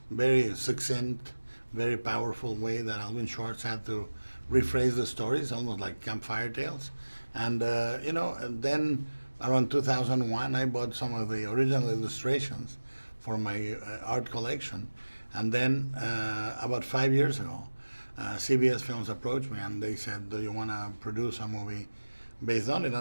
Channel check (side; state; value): both; inverted; correlation -1.00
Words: very succinct, very powerful way that Alvin Schwartz had to rephrase the stories, almost like campfire tales. And and then around 2001, I bought some of the original illustrations for my art collection. And then about 5 years ago, CBS Films approached me and they said, do you want to produce a movie based on it?